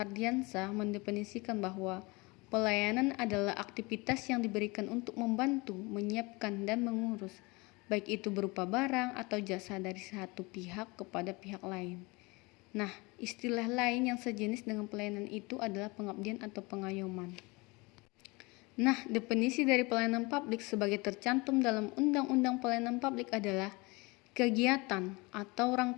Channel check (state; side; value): quieter; right; 25.5 dB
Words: mendefinisikan bahwa pelayanan adalah aktivitas yang diberikan untuk membantu, menyiapkan, dan mengurus, baik itu berupa barang atau jasa dari satu pihak kepada pihak lain. Nah, istilah lain yang sejenis dengan pelayanan itu adalah pengabdian atau pengayoman. Nah, definisi dari pelayanan publik sebagai tercantum dalam Undang-Undang Pelayanan Publik adalah kegiatan atau